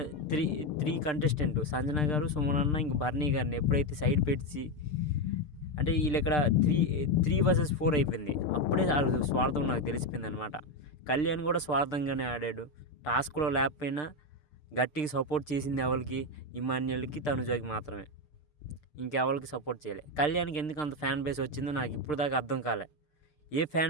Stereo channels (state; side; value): late; right; 6.7 ms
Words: త్రీ కంటెస్టెంట్ సంజన గారు, సుమన్ అన్న, ఇంక బర్నీ గారిని ఎప్పుడైతే సైడ్ పెట్టి అంటే వీళ్ళు ఇక్కడ 3 vs 4 అయిపోయింది. అప్పుడే వాళ్ళ స్వార్థం నాకు తెలిసిపోయింది అనమాట. కళ్యాణ్ కూడా స్వార్థంగానే ఆడాడు. టాస్క్లో లేకపోయినా గట్టిగా సపోర్ట్ చేసింది ఎవరికి? ఇమాన్యుయల్కి, తనుజకి మాత్రమే. ఇంకెవరికి సపోర్ట్ చేయలే. కళ్యాణ్కి ఎందుకు అంత ఫ్యాన్ బేస్ వచ్చిందో నాకు ఇప్పుడు దాకా అర్థం కాలే. ఏ